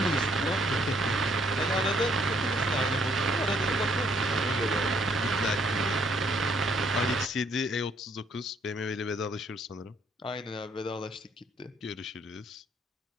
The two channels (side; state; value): both; normal; correlation 0.67